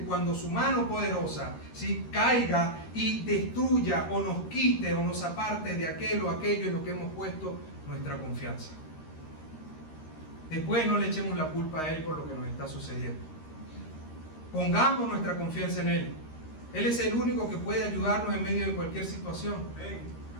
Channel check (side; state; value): right; late; 13 ms